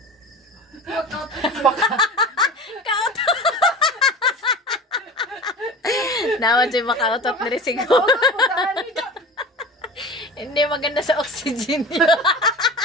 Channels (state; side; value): normal; both; correlation 0.34